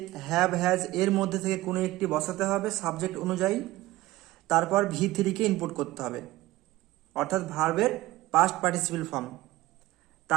হ্যাভ হ্যাজ এর মধ্যে থেকে কোনো একটি বসাতে হবে সাবজেক্ট অনুযায়ী, তারপর V3কে ইনপুট করতে হবে, অর্থাৎ ভার্বের পাস্ট পার্টিসিপেল ফর্ম।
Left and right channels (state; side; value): quieter; left; 17.5 dB